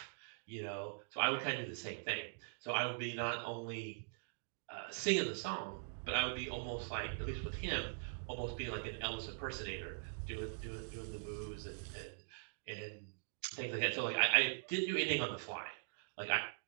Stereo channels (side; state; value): left; silent; digital silence